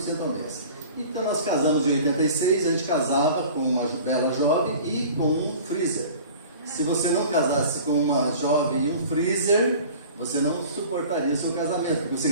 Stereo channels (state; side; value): inverted; both; correlation -0.43